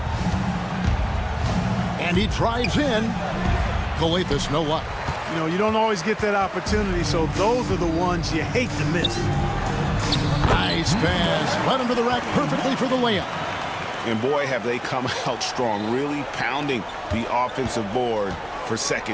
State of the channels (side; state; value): both; identical; correlation 1.00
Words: And he drives in. Kalathis, no luck. You know, you don't always get that opportunity, so those are the ones you hate to miss. Nice pass. Right under the rack perfectly for the layup. And boy, have they come out strong, really pounding the offensive board for